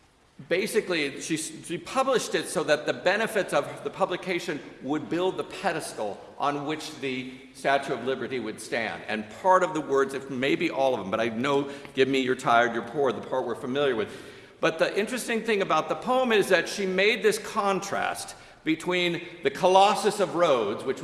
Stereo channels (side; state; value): both; identical; correlation 1.00